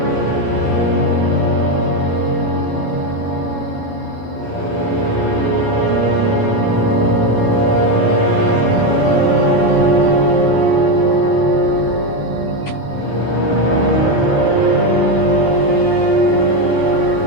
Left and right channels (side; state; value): right; late; 12 ms